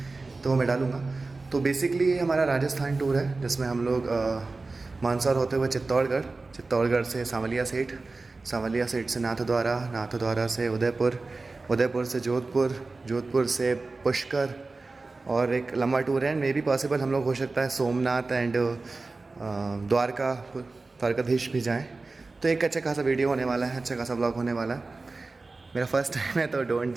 तो वो मैं डालूँगा। तो बेसिकली ये हमारा राजस्थान टूर है जिसमें हम लोग मंदसौर होते हुए चित्तौड़गढ़ से सांवलिया सेठ से नाथद्वारा से उदयपुर से जोधपुर से पुष्कर, और एक लंबा टूर है। मे बी पॉसिबल हम लोग हो सकता है सोमनाथ एंड द्वारकाधीश भी जाएं। तो एक अच्छा खासा वीडियो होने वाला है, अच्छा खासा ब्लॉग होने वाला है। मेरा फर्स्ट टाइम है तो डोंट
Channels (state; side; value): quieter; left; 3.6 dB